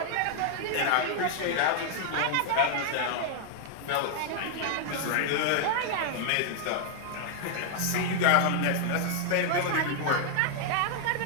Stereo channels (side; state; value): both; different; correlation 0.00